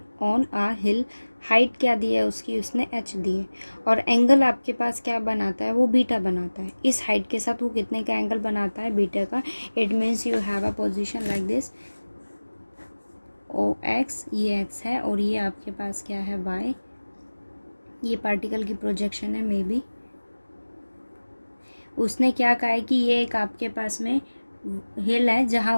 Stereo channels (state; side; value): inverted; both; correlation -1.00